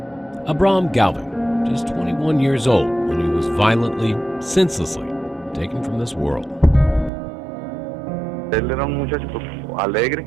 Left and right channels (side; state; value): left; drops out; at 7.1 s